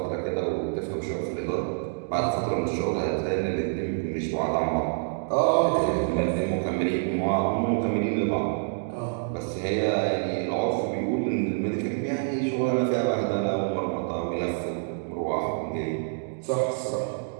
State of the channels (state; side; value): silent; left; digital silence